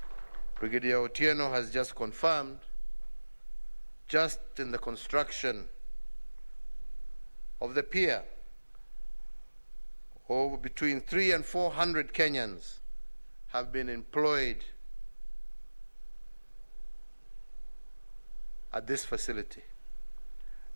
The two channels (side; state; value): both; inverted; correlation -1.00